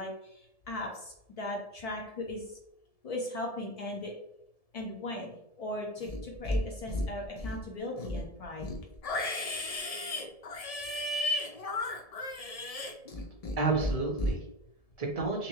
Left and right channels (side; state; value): right; late; 1.7 ms